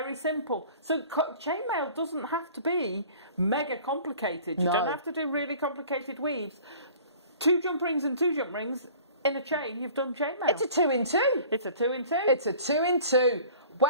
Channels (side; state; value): both; inverted; correlation -0.46